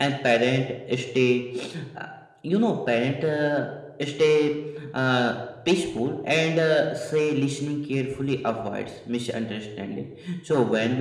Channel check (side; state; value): both; identical; correlation 1.00